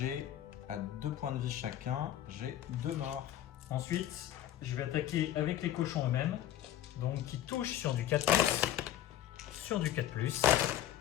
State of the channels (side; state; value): right; quieter; 12.0 dB